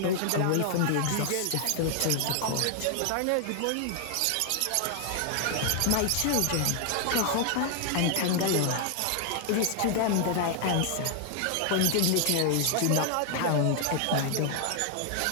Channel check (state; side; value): different; both; correlation 0.00